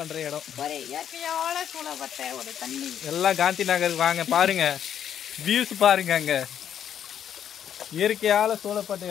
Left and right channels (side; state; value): right; quieter; 9.4 dB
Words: இடம். எல்லாம் காந்தி நகருக்கு வாங்க. பாருங்க வியூஸ் பாருங்க, அங்கே இயற்கையால் சூழப்பட்ட